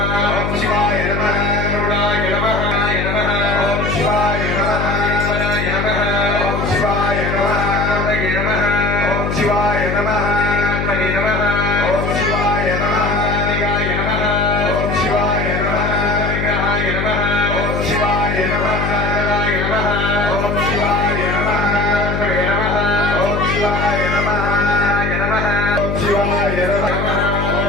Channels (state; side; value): noise; left; hum, 2 dB below the sound